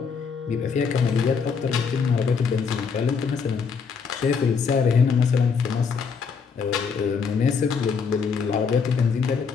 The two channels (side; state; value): right; quieter; 5.7 dB